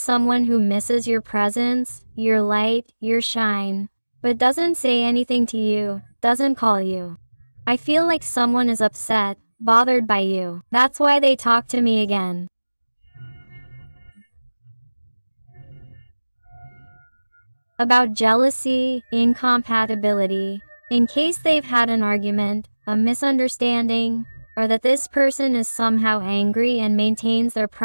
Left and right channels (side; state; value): both; inverted; correlation -1.00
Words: who misses your presence, your light, your shine, but doesn't say anything to you, doesn't call you. I feel like someone is upset, bothered by you. That's why they talk to me again. About jealousy, incompatibility, in case they've had an argument, a misunderstanding, or that this person is somehow angry and maintains their